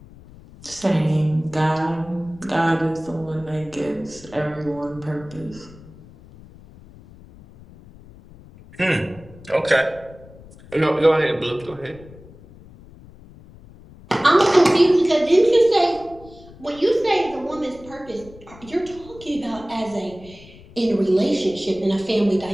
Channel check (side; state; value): left; noise; rumble, 21 dB below the sound